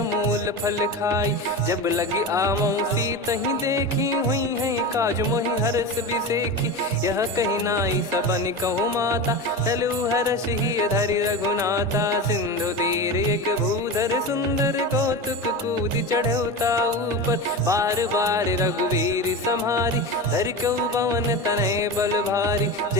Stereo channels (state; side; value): normal; both; correlation 0.25